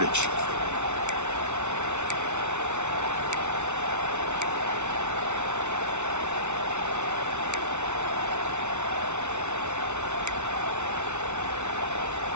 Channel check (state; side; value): late; left; 0.82 ms